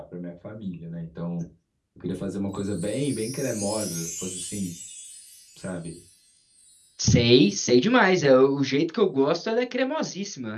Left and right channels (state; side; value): identical; both; correlation 1.00